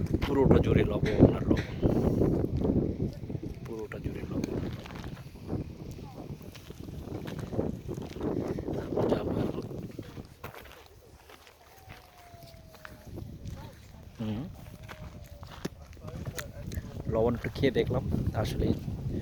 পুরোটা জুড়ে লবণ আর লবণ, পুরোটা জুড়ে লবণ। যাবো এখন। লবণ একটু খেয়ে দেখলাম, আসলে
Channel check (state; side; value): identical; both; correlation 1.00